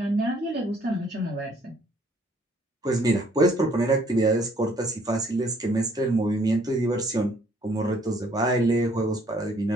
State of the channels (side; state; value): both; normal; correlation 0.63